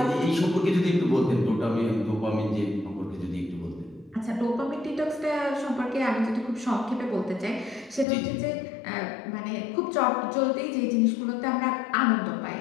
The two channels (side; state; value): right; drops out; at 8.1 s